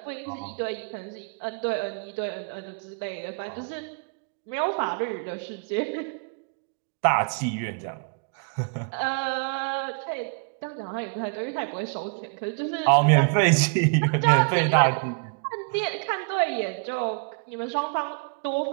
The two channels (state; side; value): quieter; left; 38.9 dB